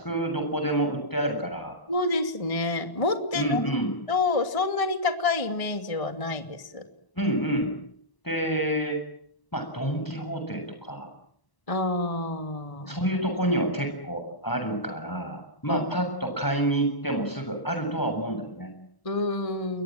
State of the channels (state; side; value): late; right; 1.0 ms